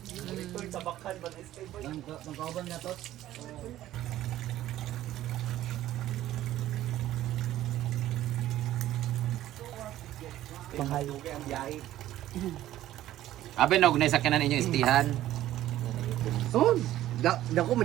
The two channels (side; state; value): left; quieter; 13.7 dB